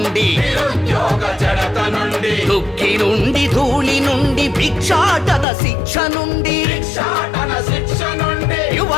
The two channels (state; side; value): drops out; right; at 5.5 s